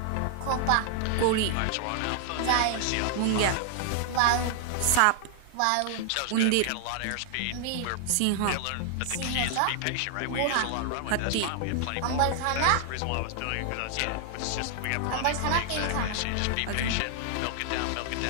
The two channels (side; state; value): both; different; correlation 0.00